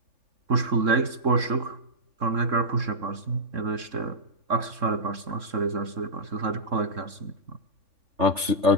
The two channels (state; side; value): late; left; 3.7 ms